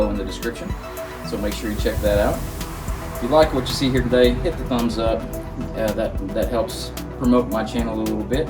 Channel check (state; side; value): identical; both; correlation 1.00